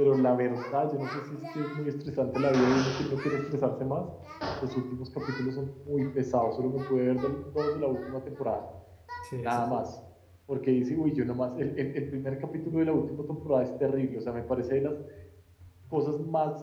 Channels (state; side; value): identical; both; correlation 1.00